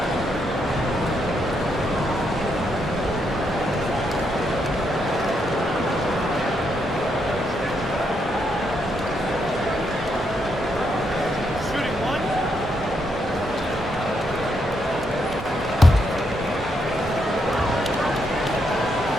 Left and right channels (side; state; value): both; normal; correlation 0.78